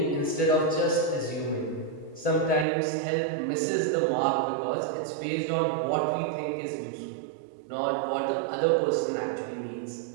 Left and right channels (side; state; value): left; drops out; at 2.7 s